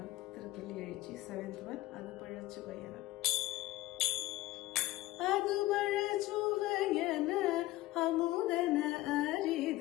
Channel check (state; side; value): quieter; right; 17.4 dB